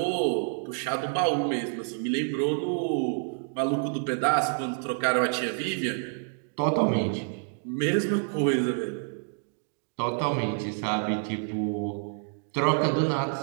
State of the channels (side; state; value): left; silent; 59 dB below the other